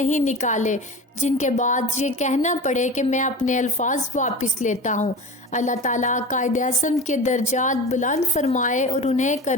نکالے جن کے بعد یہ کہنا پڑے کہ میں اپنے الفاظ واپس لیتا ہوں۔ اللہ تعالیٰ قائد اعظم کے درجات بلند فرمائے اور انہیں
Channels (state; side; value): normal; both; correlation 0.32